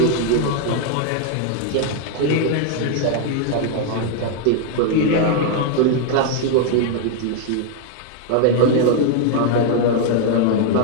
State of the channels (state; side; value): different; both; correlation 0.00